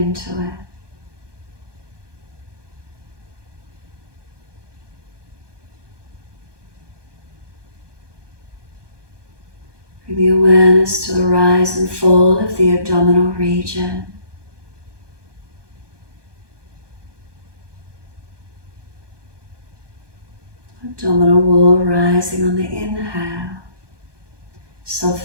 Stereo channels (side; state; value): left; late; 1.2 ms